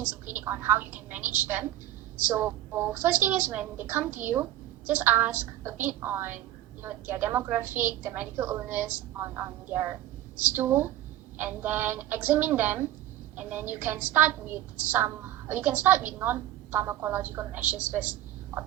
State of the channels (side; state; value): left; quieter; 13.4 dB